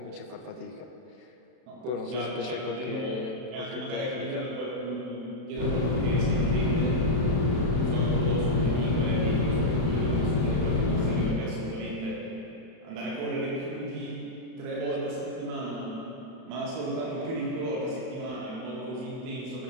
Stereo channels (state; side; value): late; left; 31 ms